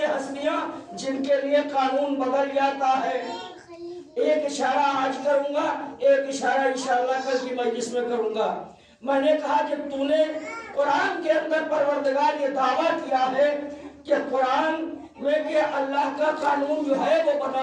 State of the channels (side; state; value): both; identical; correlation 1.00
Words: ہستیاں جن کے لیے قانون بدل جاتا ہے۔ ایک اشارہ آج کروں گا، ایک اشارہ انشاءاللہ کل کی مجلس میں کروں گا۔ میں نے کہا کہ تو نے قرآن کے اندر پروردگار یہ دعویٰ کیا ہے کہ قرآن میں کہ اللہ کا قانون جو ہے وہ